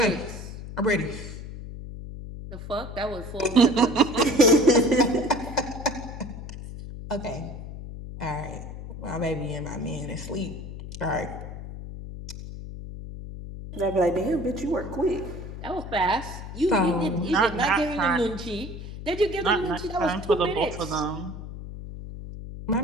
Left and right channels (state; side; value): noise; left; hum, 10 dB below the sound